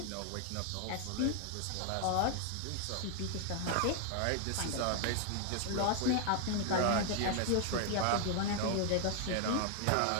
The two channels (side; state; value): both; different; correlation 0.00